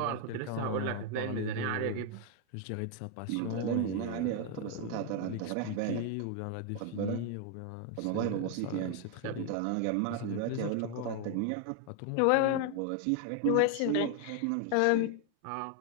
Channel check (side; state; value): both; different; correlation 0.00